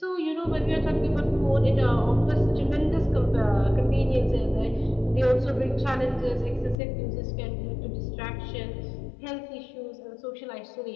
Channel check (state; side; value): drops out; right; at 6.8 s